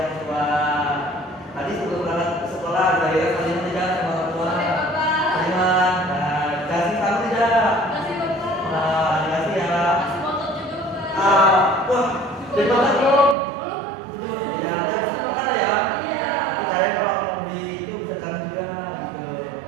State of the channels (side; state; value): left; drops out; at 13.4 s